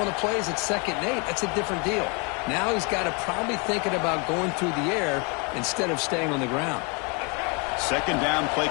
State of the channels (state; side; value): quieter; right; 32.7 dB